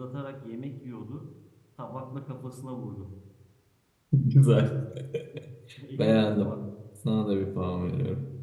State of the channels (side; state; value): both; identical; correlation 1.00